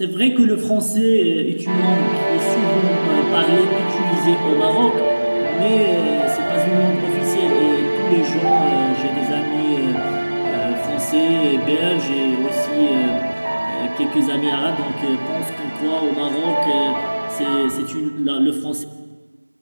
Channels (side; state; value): both; inverted; correlation -1.00